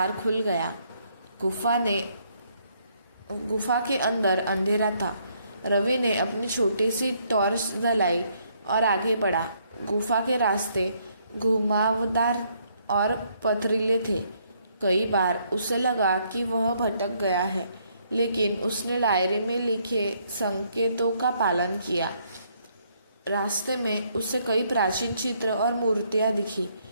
खुल गया। गुफा के अंदर अंधेरा था। रवि ने अपनी छोटी सी टॉर्च जलाई और आगे बढ़ा। गुफा के रास्ते घुमावदार और पथरीले थे। कई बार उसे लगा कि वह भटक गया है, लेकिन उसने डायरी में लिखे संकेतों का पालन किया। रास्ते में उसे कई प्राचीन चित्र और मूर्तियां दिखी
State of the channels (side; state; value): both; inverted; correlation -0.70